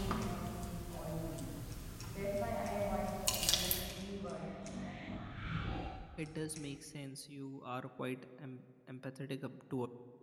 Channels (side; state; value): both; identical; correlation 1.00